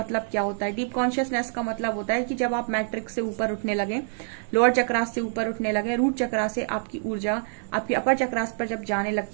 क्या होता है। डीप कॉन्शियसनेस का मतलब होता है कि जब आप मैट्रिक्स से ऊपर उठने लगे, लोअर चक्रास से ऊपर उठने लगे, रूट चक्रा से आपकी ऊर्जा आपकी अपर चक्रास पर जब जाने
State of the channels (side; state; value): left; silent; 61 dB below the other